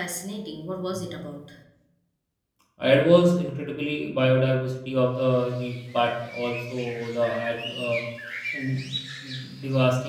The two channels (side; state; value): both; identical; correlation 1.00